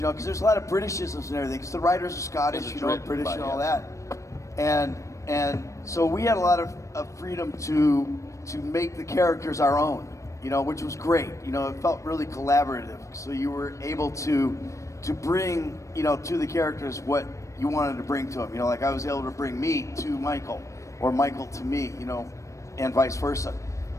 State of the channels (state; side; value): late; right; 0.15 ms